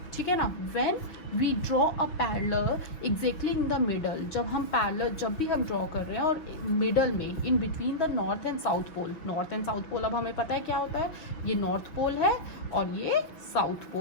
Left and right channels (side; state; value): right; late; 6.1 ms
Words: ठीक है ना? When we draw a parallel exactly in the middle, जब भी हम ड्रॉ कर रहे हैं और मिडल में in between the north and south pole. North and south pole अब हमें पता है क्या होता है, ये नॉर्थ पोल है और ये साउथ